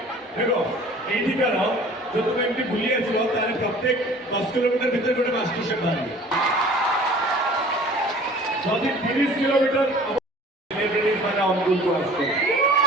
দেখো এইদিকার जो तुम एमटी भूली आसो तारे प्रत्येक 10 किलोमीटर भीतर गोटे मास्टर शेफ बाहर जदि 30 किलोमीटर सेलिब्रिटीज माने अनुकूल को आसो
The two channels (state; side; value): normal; both; correlation 0.47